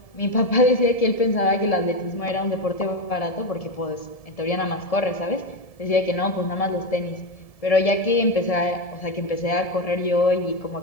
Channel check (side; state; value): right; late; 1.7 ms